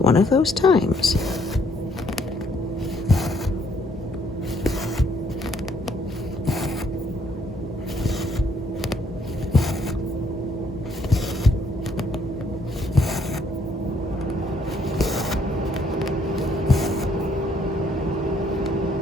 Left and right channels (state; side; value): normal; both; correlation 0.67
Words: of those times.